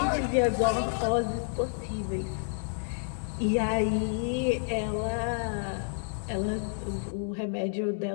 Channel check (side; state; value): right; silent; digital silence